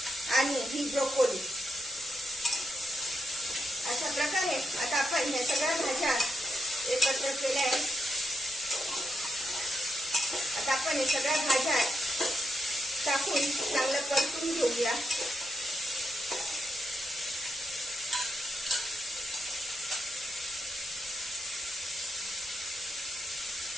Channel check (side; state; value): both; normal; correlation 0.82